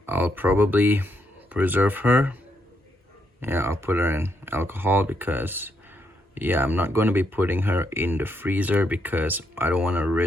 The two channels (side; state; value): both; normal; correlation 0.77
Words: I'll probably preserve her. Yeah, I'll put her in alcohol because, yeah, I'm not going to be putting her in the freezer because I don't want to